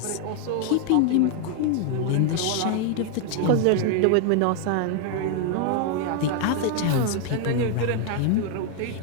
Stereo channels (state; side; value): different; both; correlation 0.00